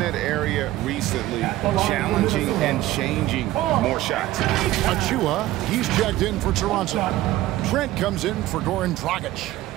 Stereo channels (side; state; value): left; quieter; 15.8 dB